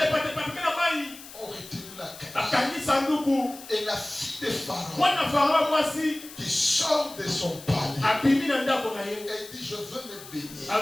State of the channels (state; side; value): noise; left; hiss, 16 dB below the sound